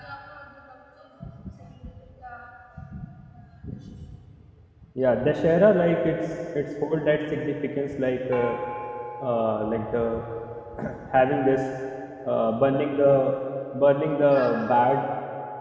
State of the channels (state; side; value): identical; both; correlation 1.00